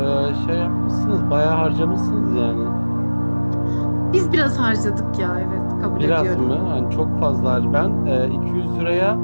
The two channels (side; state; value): both; inverted; correlation -1.00